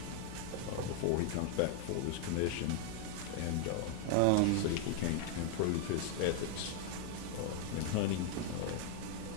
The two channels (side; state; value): both; different; correlation 0.00